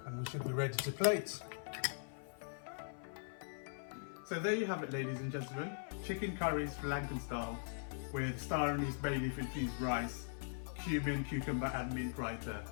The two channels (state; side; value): silent; right; 51 dB below the other